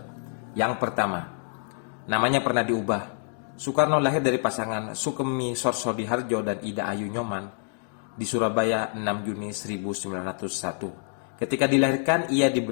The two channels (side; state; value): right; silent; 60 dB below the other